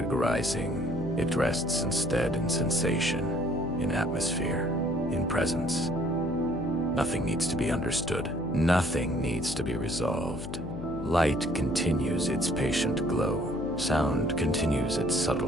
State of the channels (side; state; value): left; noise; hum, 9 dB below the sound